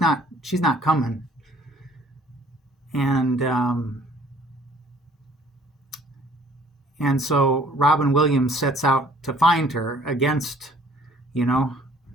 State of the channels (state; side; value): normal; both; correlation 0.56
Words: coming. And and so Robin Williams sets out to find her against, you know,